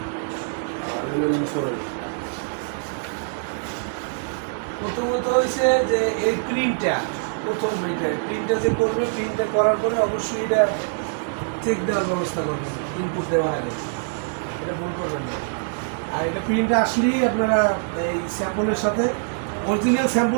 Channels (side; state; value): left; silent; digital silence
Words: প্রথমত হয়েছে যে এই প্রিন্টটা প্রথম প্রিন্টটা যে করবে, প্রিন্টটা করার পরে অবশ্যই এটা চেক দেওয়ার ব্যবস্থা করবেন ইনপুট দেওয়ার আগে, এটা ভুল করবেন না। আর এটা প্রিন্ট আসলেই আপনারা এই স্যাম্পলের সাথে অরিজিনাল